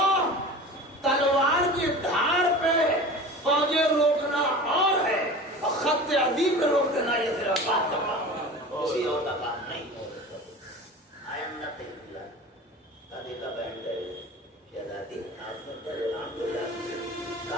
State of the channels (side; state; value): both; normal; correlation 0.36